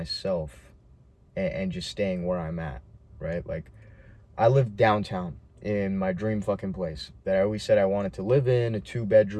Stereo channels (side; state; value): both; identical; correlation 1.00